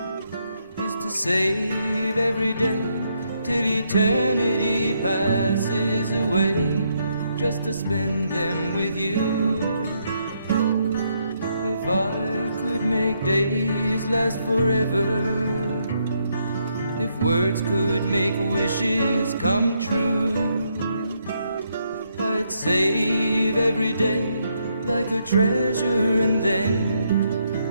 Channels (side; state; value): both; inverted; correlation -0.76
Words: is to save every day till eternity passes away, just to spend them with you. If I could make days last forever, if words could make wishes come true, I'd save every day like a treasure, and then